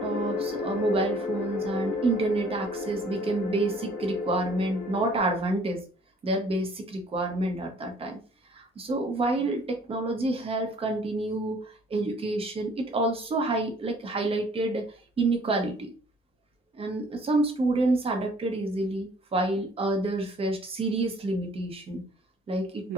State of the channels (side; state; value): both; normal; correlation 0.56